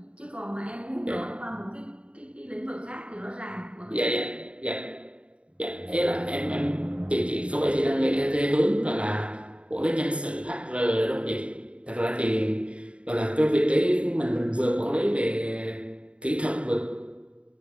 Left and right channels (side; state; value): left; late; 0.059 ms